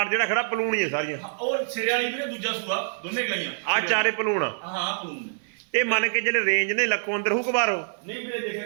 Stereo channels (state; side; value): silent; left; 57 dB below the other